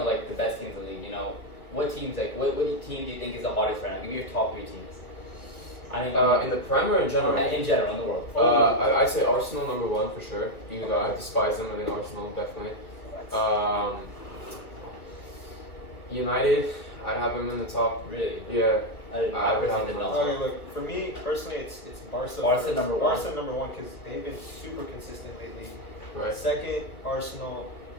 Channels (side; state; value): right; late; 1.3 ms